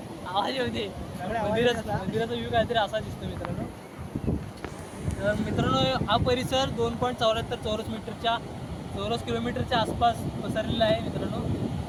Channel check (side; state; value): both; identical; correlation 1.00